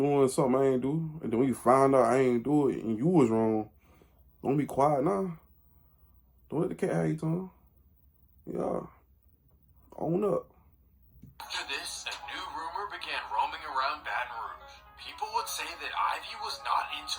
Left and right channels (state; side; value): identical; both; correlation 1.00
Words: something I ain't do. And then when you find out I ain't do it and you was wrong, don't be quiet now. Don't let the cat have your tongue. Yeah. Own up. After this, a new rumor began roaming around Baton Rouge. People would say that Ivy was not into